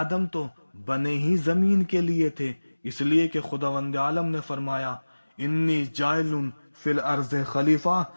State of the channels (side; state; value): both; inverted; correlation -1.00